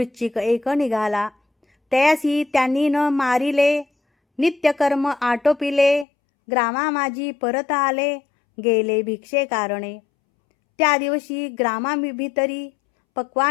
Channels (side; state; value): right; drops out; at 6.1 s